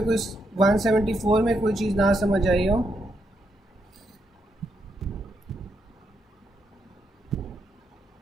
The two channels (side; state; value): both; normal; correlation 0.80